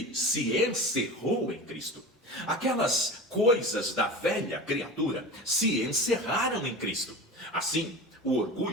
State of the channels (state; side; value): normal; both; correlation 0.31